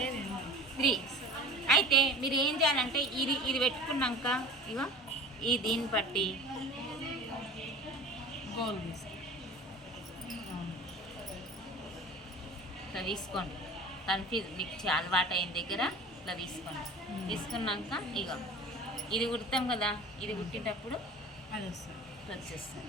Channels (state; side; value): normal; both; correlation 0.40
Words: 3. అయితే మీరు ఏం చేయాలంటే ఇది పెట్టుకున్నాక ఇగో ఈ దీన్ని బట్టి ఇట్లా తీసుకోండి. కన్ఫ్యూజ్ మీకు అలవాటు అయిన దగ్గర ఇట్లా తీసుకోండి. తీసుకున్నాక ఇగో ఇది కుడతాం కదా, ఇది కుట్టేటప్పుడు అది